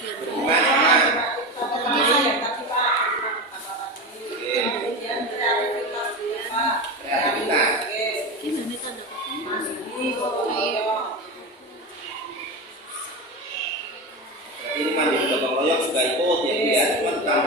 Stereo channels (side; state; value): both; normal; correlation 0.22